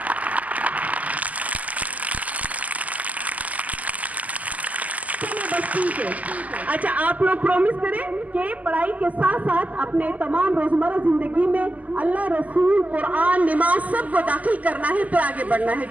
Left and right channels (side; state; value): left; late; 0.076 ms